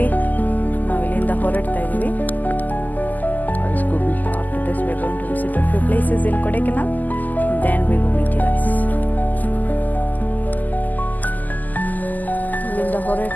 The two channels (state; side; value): late; right; 0.083 ms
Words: ನಾವು ಇಲ್ಲಿಂದ ಹೊರಡ್ತಾ ಇದ್ದೀವಿ. After this we are going to visit a few places in Kodaikanal, then we will meet you guys. ಇಲ್ಲಿಂದ